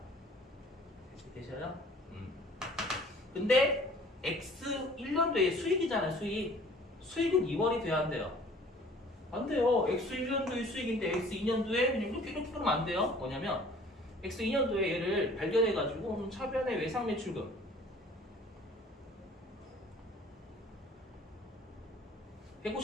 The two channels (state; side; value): normal; both; correlation 0.52